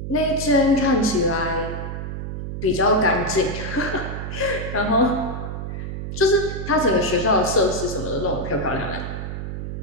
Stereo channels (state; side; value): noise; right; hum, 6 dB below the sound